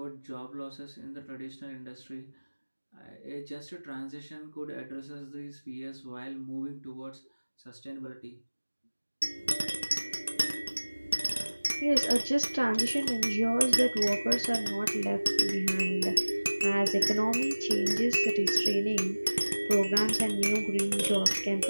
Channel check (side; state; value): both; inverted; correlation -1.00